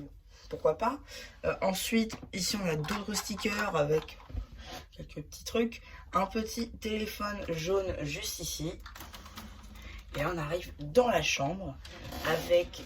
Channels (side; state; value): both; identical; correlation 1.00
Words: pourquoi pas. Ensuite, ici on a d'autres stickers avec quelques petits trucs. Un petit téléphone jaune juste ici. Et on arrive dans la chambre